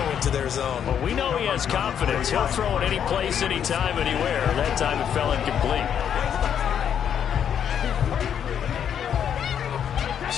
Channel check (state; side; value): quieter; right; 8.7 dB